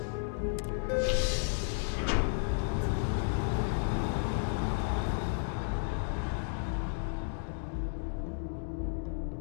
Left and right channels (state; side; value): silent; right; digital silence